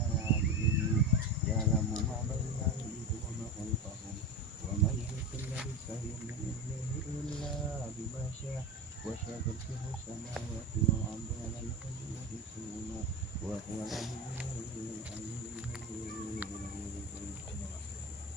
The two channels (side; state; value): both; normal; correlation 0.24